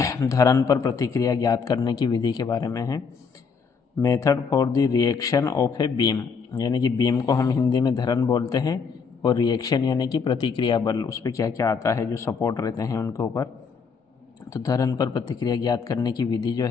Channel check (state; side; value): quieter; right; 5.6 dB